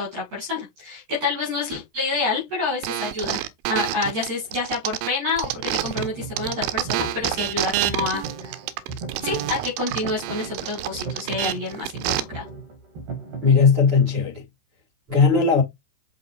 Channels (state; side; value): late; left; 14 ms